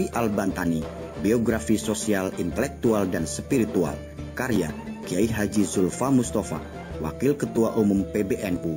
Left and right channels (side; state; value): both; identical; correlation 1.00